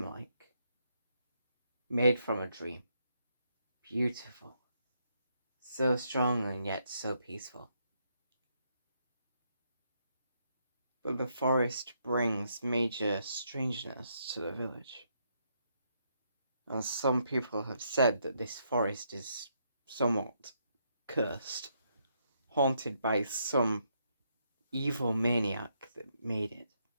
made from a dream. Beautiful, so strong and yet so peaceful. But the forest brings major strangeness to the village. And some people have said that this forest is somewhat cursed, haunted by some evil maniac that made it.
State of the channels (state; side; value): inverted; both; correlation -0.76